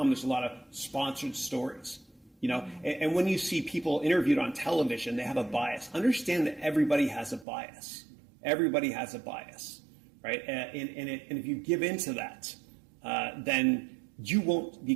There's a lot of sponsored stories. And when you see people interviewed on television, they have a bias. Understand that everybody has a bias. Everybody has a bias, right? And if you give into that, then you won't be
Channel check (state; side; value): drops out; left; at 7.5 s